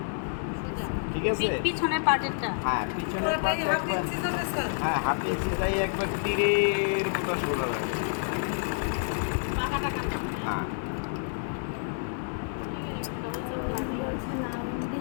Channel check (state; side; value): silent; right; 59 dB below the other